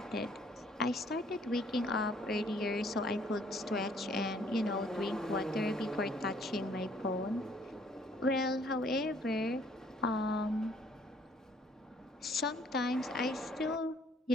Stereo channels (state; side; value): normal; both; correlation 0.62